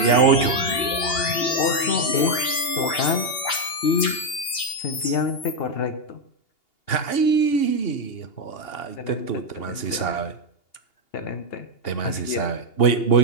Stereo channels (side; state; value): right; late; 2.8 ms